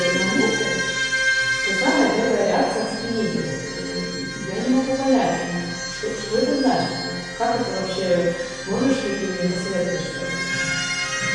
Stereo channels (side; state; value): both; identical; correlation 1.00